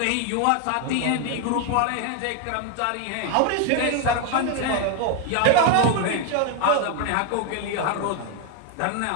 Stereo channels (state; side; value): different; both; correlation 0.01